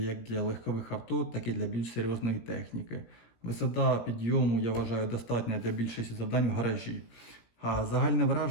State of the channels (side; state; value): right; late; 17 ms